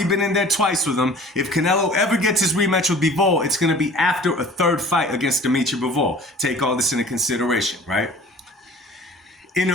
been in there twice with him. If Canelo ever gets his rematch with Bivol, it's going to be after a 3rd fight against Dmitry Bivol. Take all this into consideration, right? In a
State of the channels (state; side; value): normal; both; correlation 0.46